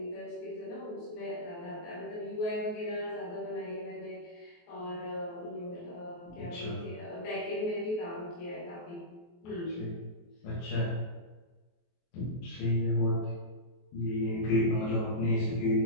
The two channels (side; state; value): right; late; 23 ms